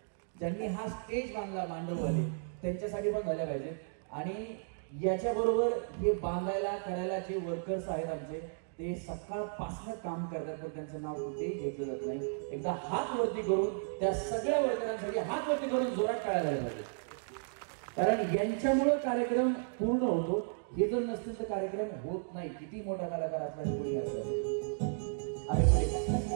ज्यांनी हा स्टेज बांधला मांडववाले, त्यांच्यासाठी पण झाल्या पाहिजेत. आणि याच्याबरोबर हे बांधायला करायला जे वर्कर्स आहेत आमचे, ते सकाळपासून काम करतात पण त्यांचं नाव कुठेही घेतलं जात नाही. एकदा हात वरती करून त्या सगळ्या वर्करांसाठी हात वरती करून जोरात टाळ्या झाल्या पाहिजे, कारण यांच्यामुळं कार्यक्रम पूर्ण होतो. हे जर नसतील तर कार्यक्रम होत नाही. किती मोठा कलाकार असला कोणी असला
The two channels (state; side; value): silent; left; digital silence